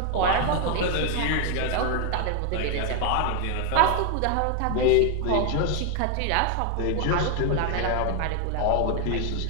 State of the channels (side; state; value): both; different; correlation 0.01